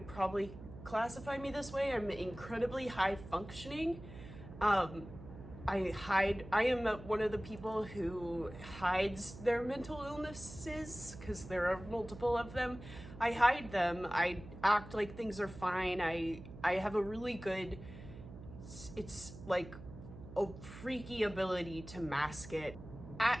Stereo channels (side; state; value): right; noise; hum, 14 dB below the sound